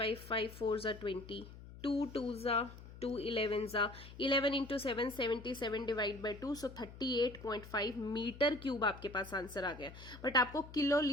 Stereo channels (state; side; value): noise; left; hum, 16 dB below the sound